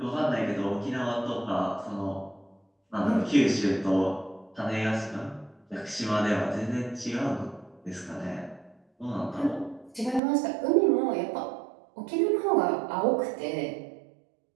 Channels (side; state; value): left; drops out; at 10.2 s